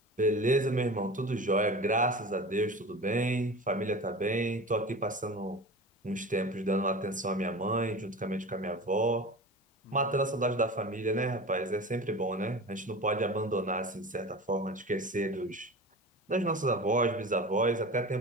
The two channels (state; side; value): normal; both; correlation 0.33